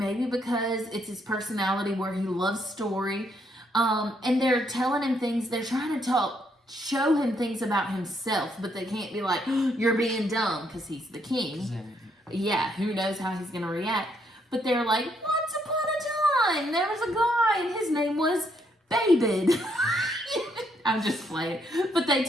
because it's his personality where he loves story, and they're telling him things. They're trying to show him things about himself, but they can't be like, you're being dumb, because he's the king. Yeah, who knows how he's going to react. But they're like, once upon a time, there was a guy, and his name was David. I'm just playing. But they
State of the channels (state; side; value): normal; both; correlation 0.73